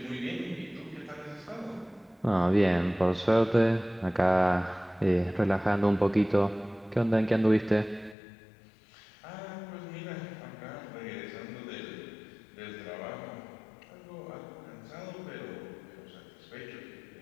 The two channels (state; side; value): drops out; right; at 8.2 s